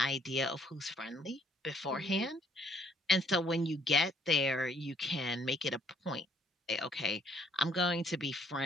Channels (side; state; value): both; normal; correlation 0.64